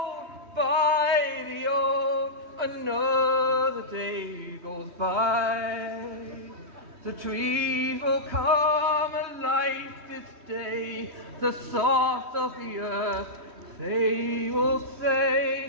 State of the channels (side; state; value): left; late; 3.2 ms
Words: by the old, another day goes by. The trees will come alive this day, the salt of the earth, they will